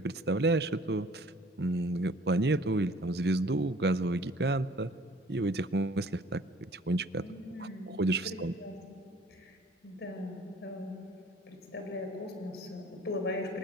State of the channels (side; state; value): both; normal; correlation 0.53